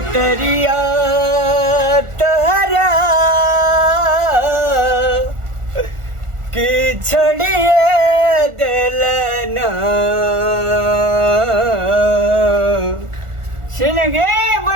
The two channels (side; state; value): left; late; 1.4 ms